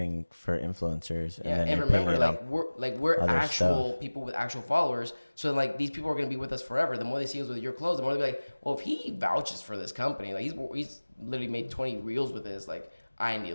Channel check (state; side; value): inverted; both; correlation -1.00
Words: for influencers. Yeah, and remember, we're actual people with actual followers. So like these people are gonna be with us forever. The more they see us with your clothes, the more they'll be like, well, if he vouches for this company, like he's literally made 20 reels with this, like I need